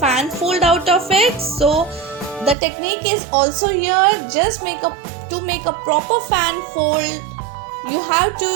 fold out of it. So the technique is also here, just to make a proper fan fold you have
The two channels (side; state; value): left; drops out; at 2.6 s